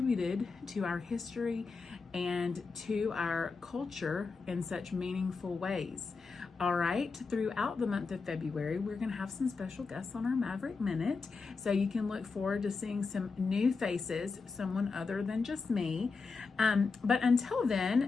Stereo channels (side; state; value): right; quieter; 4.6 dB